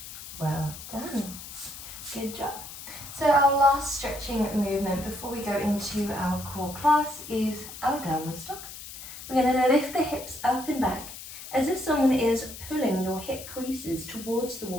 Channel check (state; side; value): noise; left; hiss, 12 dB below the sound